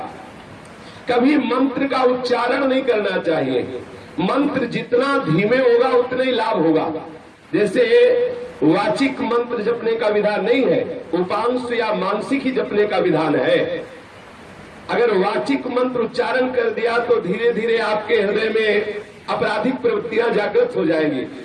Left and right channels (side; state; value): both; identical; correlation 1.00